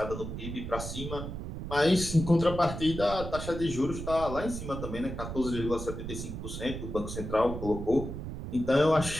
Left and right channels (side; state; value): right; noise; rumble, 7 dB below the sound